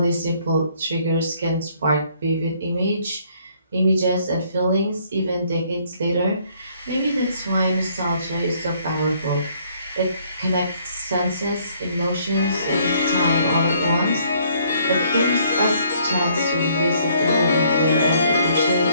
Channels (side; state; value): both; inverted; correlation -0.64